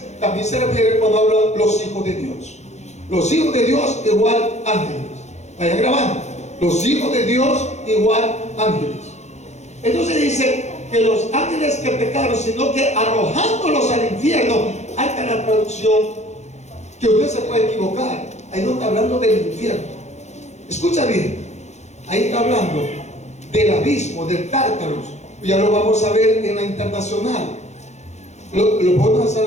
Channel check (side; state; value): right; late; 0.33 ms